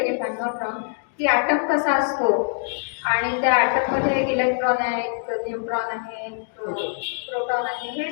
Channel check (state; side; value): silent; right; digital silence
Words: if I am not wrong, की ॲटम कसा असतो आणि त्या ॲटममध्ये एक इलेक्ट्रॉन आहे, एक न्यूट्रॉन आहे, प्रोटॉन आहे. हे